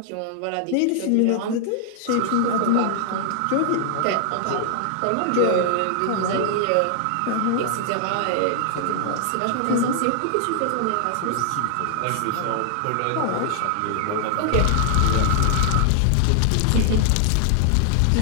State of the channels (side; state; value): both; different; correlation -0.01